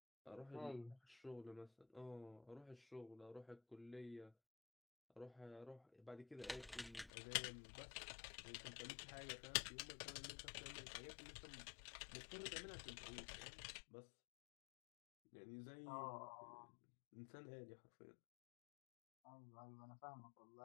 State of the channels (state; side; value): drops out; right; at 7.1 s